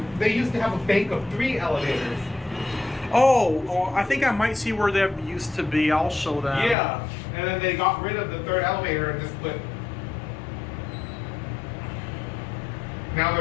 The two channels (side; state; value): right; drops out; at 6.8 s